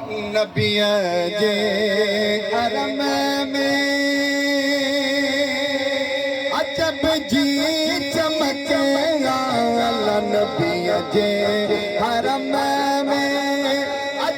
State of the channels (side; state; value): both; identical; correlation 1.00